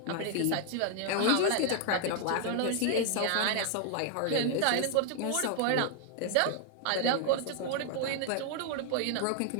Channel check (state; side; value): different; both; correlation 0.00